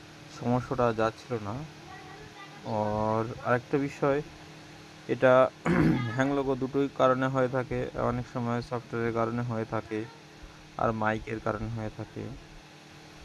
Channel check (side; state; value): both; identical; correlation 1.00